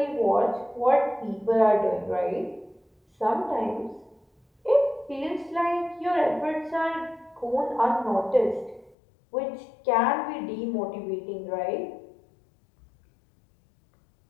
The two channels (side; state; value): right; drops out; at 9.0 s